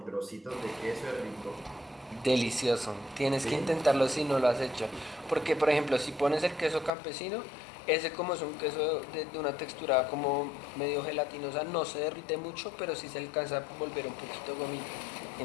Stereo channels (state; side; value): drops out; right; at 6.9 s